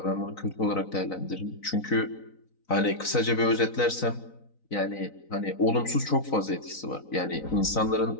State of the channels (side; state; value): right; late; 3.9 ms